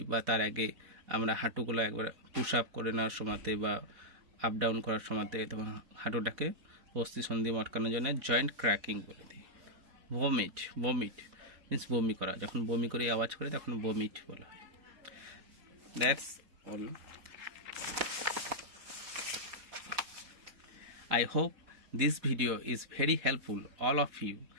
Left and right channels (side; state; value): left; late; 4.2 ms